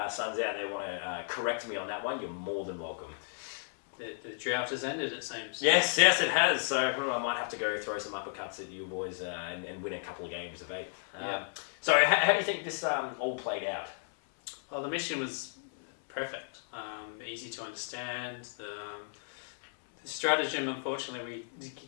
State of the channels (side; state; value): right; silent; 55 dB below the other